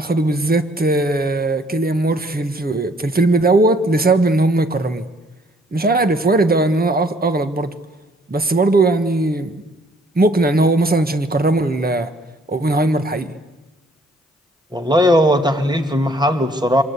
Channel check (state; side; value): normal; both; correlation 0.62